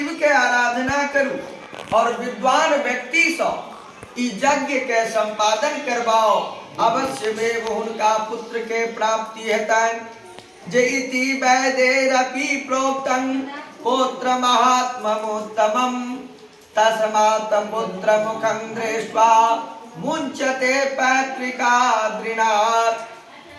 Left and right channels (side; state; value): both; identical; correlation 1.00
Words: के आराधना करू और विद्वान व्यक्ति से ई यज्ञ के संपादन करवाओ। अवश्यमेव हुनका पुत्र के प्राप्ति हेतनि। जे इति वैदेरपि प्रोक्तं पुत्र महात्म्यमुत्तमं तस्मात् पुत्र मुखं दृष्ट्वा मुंचते पैतृकाद्रिनाथ।